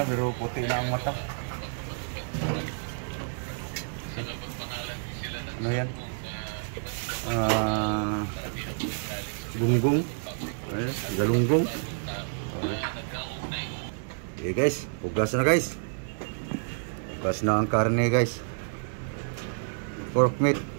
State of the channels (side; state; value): left; silent; digital silence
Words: pero puti na ang mata. Ano yan? Gunggong. Galunggong. Okay guys, hugas na guys. Hugas na ang karne guys. Pork meat.